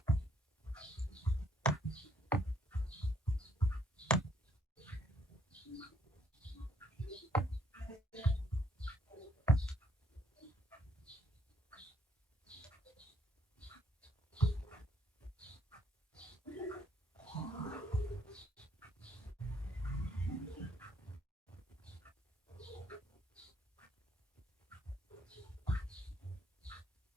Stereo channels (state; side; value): normal; both; correlation 0.68